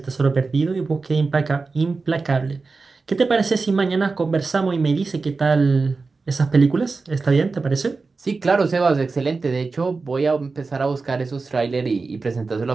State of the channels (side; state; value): left; quieter; 4.1 dB